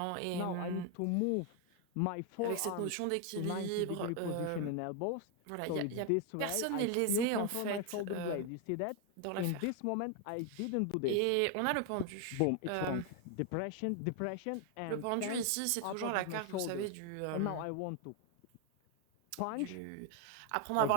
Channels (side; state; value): both; different; correlation 0.01